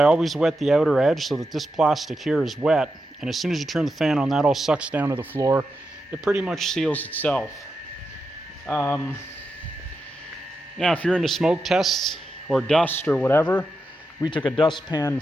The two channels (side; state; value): both; normal; correlation 0.87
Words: always wet the outer edge so that this plastic here is wet. And as soon as you turn the fan on, that all sucks down to the floor. It pretty much seals itself. Now, if you're into smoke tests or dust or whatever, we took a dustpan